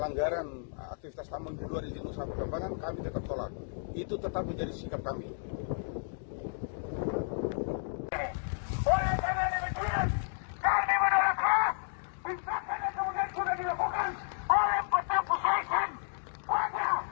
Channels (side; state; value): right; silent; digital silence